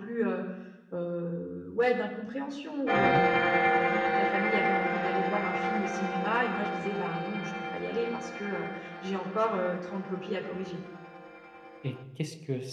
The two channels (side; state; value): both; identical; correlation 1.00